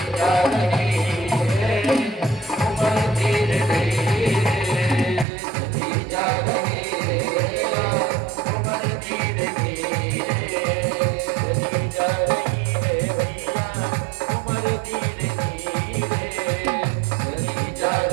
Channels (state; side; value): drops out; left; at 5.2 s